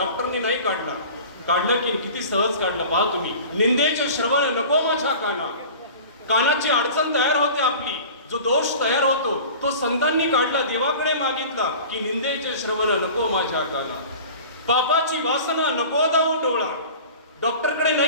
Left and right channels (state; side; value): inverted; both; correlation -0.40